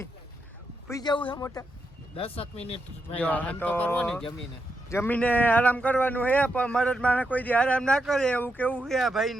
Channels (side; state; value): both; normal; correlation 0.84